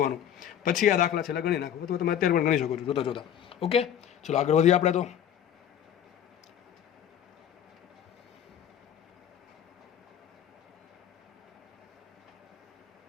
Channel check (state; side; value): quieter; right; 9.7 dB